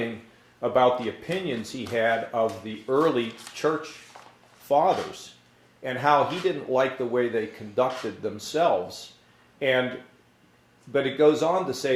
about the opinions he had of the early church fathers, and how he didn't like the way they conducted themselves. But it goes on to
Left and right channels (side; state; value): both; identical; correlation 1.00